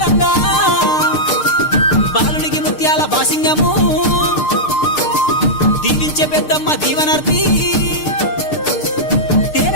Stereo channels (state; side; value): late; right; 6.6 ms